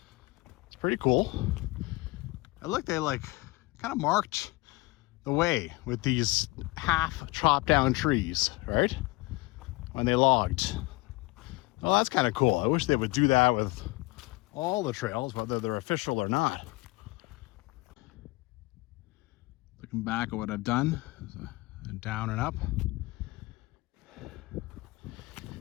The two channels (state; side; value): quieter; right; 22.3 dB